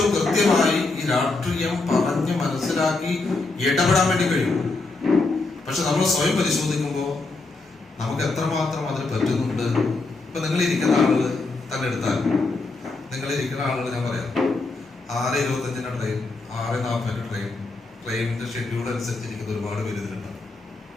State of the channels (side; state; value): right; quieter; 3.5 dB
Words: കൃത്യമായി ഈ രാഷ്ട്രീയം പറഞ്ഞ് മനസ്സിലാക്കി ഇടപെടാൻ വേണ്ടി കഴിയും. പക്ഷെ നമ്മൾ സ്വയം പരിശോധിക്കുമ്പോൾ നമുക്ക് എത്രമാത്രം അതിന് പറ്റുന്നുണ്ട്. ഇപ്പൊ നിങ്ങളിരിക്കുന്ന ആളുകൾ തന്നെ എടുത്താൽ, നിങ്ങളിരിക്കുന്ന ആളുകൾ ഞാൻ പറയാം, 6:25 ട്രെയിൻ, 6:40 ട്രെയിൻ, ട്രെയിനിന്റെ ഷെഡ്യൂൾ അനുസരിച്ചിരിക്കുന്ന ഒരുപാട് പേര് ഇതിലുണ്ടാവും